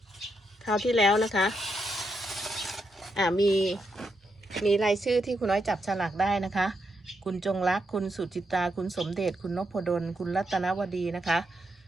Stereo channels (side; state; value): both; normal; correlation 0.81